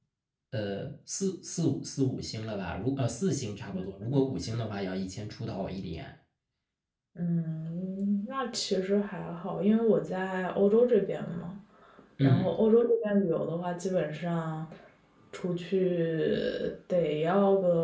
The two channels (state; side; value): identical; both; correlation 1.00